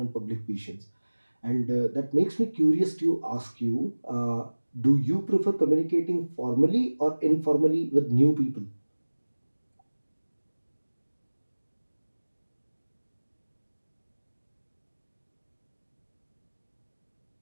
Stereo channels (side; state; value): both; inverted; correlation -1.00